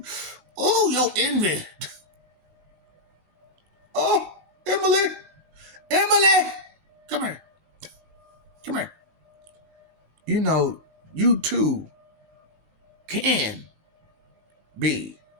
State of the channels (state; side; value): late; left; 19 ms